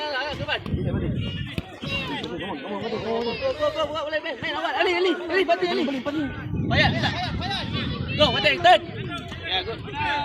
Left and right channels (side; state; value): both; identical; correlation 1.00